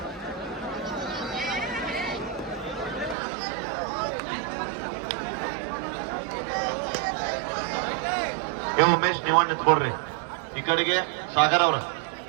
ಉಮೇಶ್ ನೀವ ನಿಂತ್ಕೊಡ್ರಿ ಈ ಕಡೆಗೆ. ಸಾಗರ್ ಅವ್ರ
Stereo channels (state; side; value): drops out; left; at 3.2 s